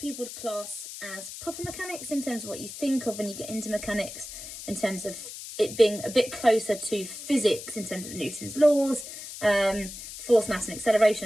would class as proper mechanics, in terms of what you think of when you get into mechanics, in terms of it being a bit closer to physics in terms of Newton's laws, force, mass and acceleration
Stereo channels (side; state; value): left; noise; hiss, 11 dB below the sound